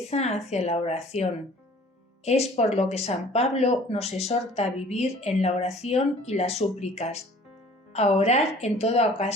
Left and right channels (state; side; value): normal; both; correlation 0.50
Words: hacia la oración. Es por lo que San Pablo nos exhorta a vivir en la oración y las súplicas, a orar en toda